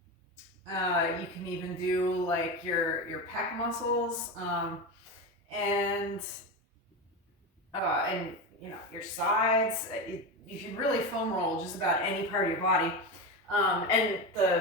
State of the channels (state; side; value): normal; both; correlation 0.19